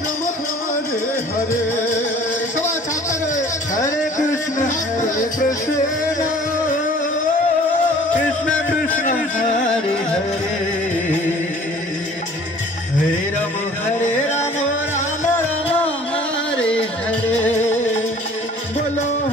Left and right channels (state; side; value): normal; both; correlation 0.50